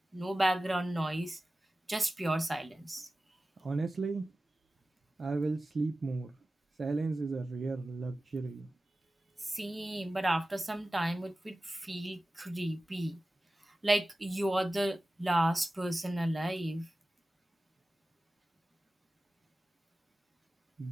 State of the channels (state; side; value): normal; both; correlation 0.95